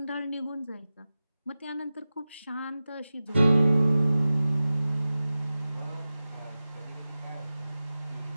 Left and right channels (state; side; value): inverted; both; correlation -0.95